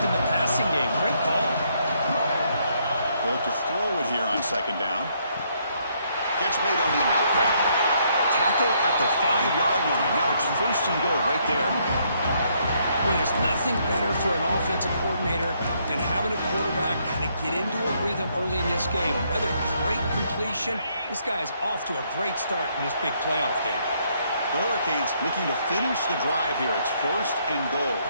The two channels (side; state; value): both; inverted; correlation -0.71